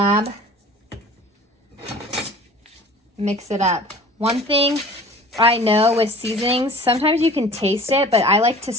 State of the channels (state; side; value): normal; both; correlation 0.44